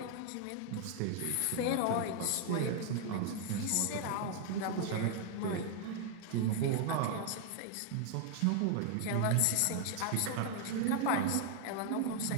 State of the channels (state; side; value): different; both; correlation 0.00